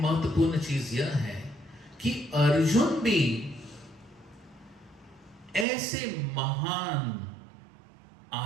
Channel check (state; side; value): drops out; left; at 5.7 s